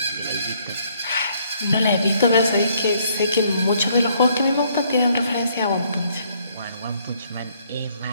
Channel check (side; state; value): both; inverted; correlation -0.67